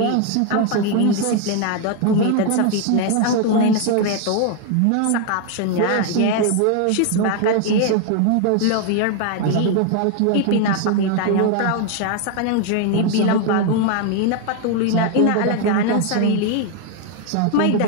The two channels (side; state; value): both; different; correlation 0.01